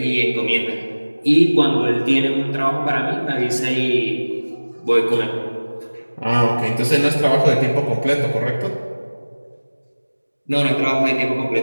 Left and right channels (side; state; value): both; inverted; correlation -1.00